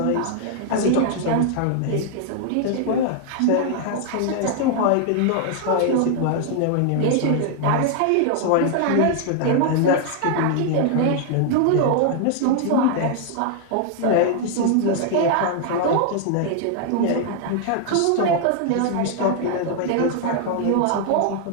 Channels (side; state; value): both; different; correlation 0.00